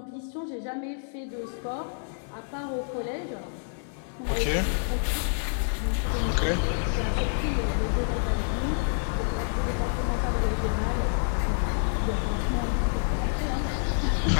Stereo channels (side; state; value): right; silent; digital silence